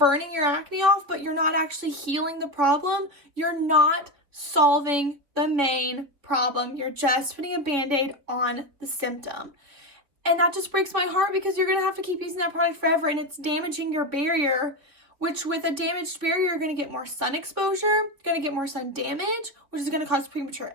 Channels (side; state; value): left; late; 3.6 ms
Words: your acne off, but you're not actually healing the problem. You're not solving the main problem. You're just putting a band-aid on the symptom. And that just breaks my heart because you're going to have to keep using that product forever and it's damaging your barrier, which with a damaged barrier, you're going to get more sun exposure, going to get more sun damage, which is going to cause premature